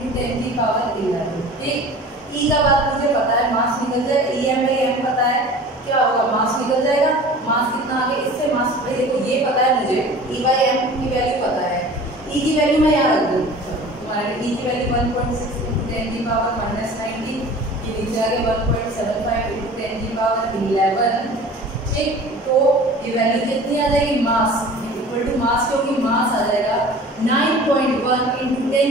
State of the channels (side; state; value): both; normal; correlation 0.42